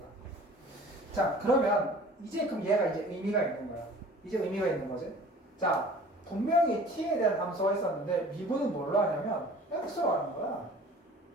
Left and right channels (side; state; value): both; normal; correlation 0.46